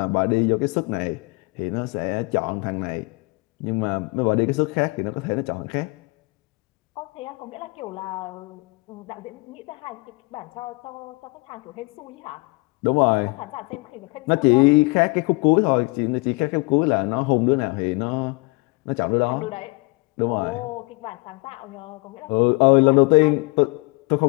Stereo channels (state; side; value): quieter; right; 27.8 dB